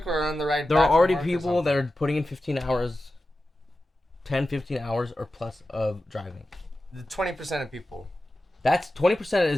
or on the ride. There are already people that are putting in 15 hours, 10, 15 hours or plus of driving. The 20% of people. That's 20%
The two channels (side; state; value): both; normal; correlation 0.93